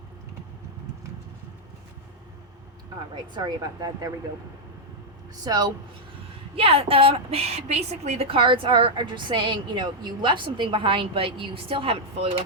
All right, sorry about that. There we go. So, yeah, basically the cards are just saying, you left something behind, but you still haven't fully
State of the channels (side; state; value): both; normal; correlation -0.03